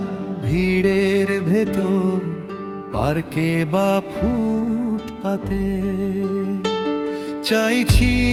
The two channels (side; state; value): both; identical; correlation 1.00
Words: ভিড়ের ভেতর, পার্কে বা ফুটপাতে। চাইছি